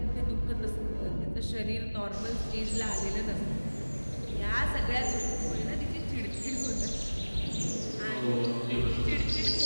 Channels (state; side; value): inverted; both; correlation -1.00